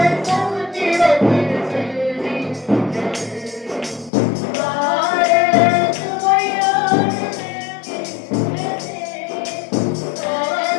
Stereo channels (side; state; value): right; drops out; at 4.1 s